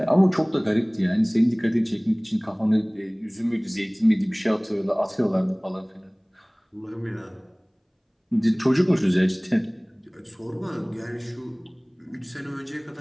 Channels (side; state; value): both; identical; correlation 1.00